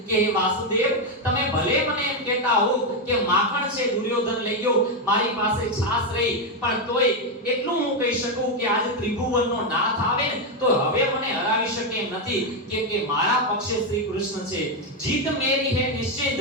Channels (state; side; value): normal; both; correlation 0.05